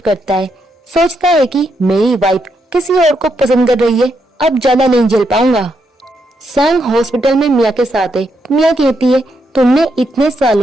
करता है, सोचता है कि मेरी वाइफ किसी और को पसंद कर रही है, अब ज्यादा नहीं झेल पाऊंगा। सांग हॉस्पिटल में मिया के साथ है। मिया कहती है, तुमने इतने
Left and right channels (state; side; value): normal; both; correlation 0.80